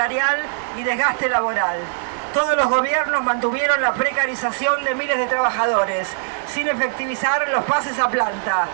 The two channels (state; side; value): silent; left; 65 dB below the other